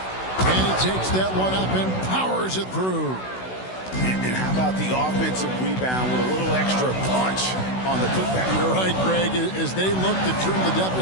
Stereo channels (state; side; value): late; right; 16 ms